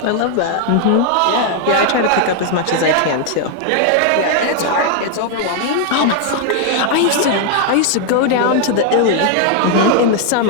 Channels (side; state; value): both; different; correlation 0.00